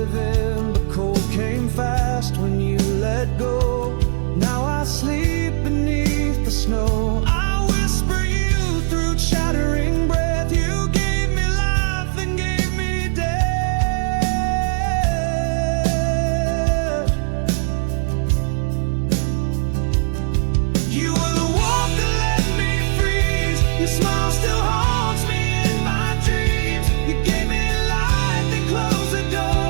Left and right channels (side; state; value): left; silent; digital silence